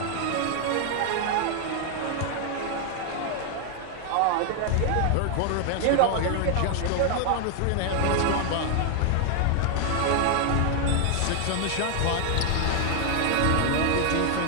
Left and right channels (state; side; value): different; both; correlation 0.00